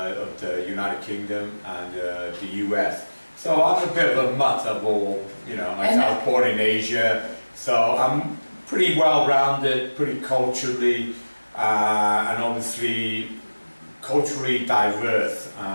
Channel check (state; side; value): inverted; both; correlation -1.00